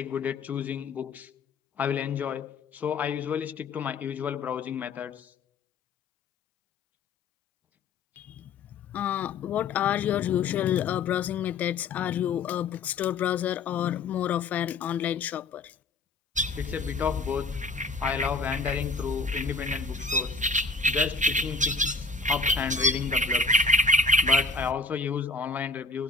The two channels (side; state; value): right; quieter; 3.8 dB